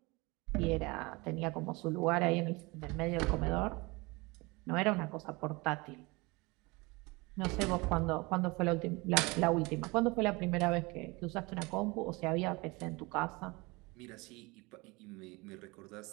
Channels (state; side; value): quieter; left; 25.0 dB